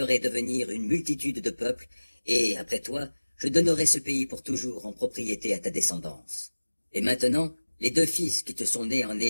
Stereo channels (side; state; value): both; inverted; correlation -1.00